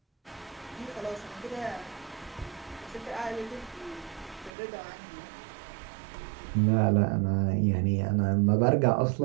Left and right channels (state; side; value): drops out; left; at 4.5 s